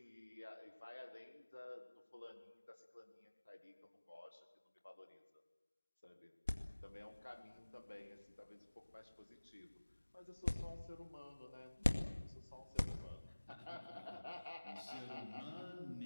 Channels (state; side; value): inverted; both; correlation -1.00